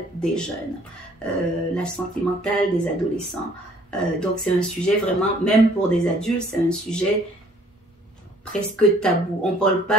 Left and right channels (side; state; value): both; normal; correlation 0.58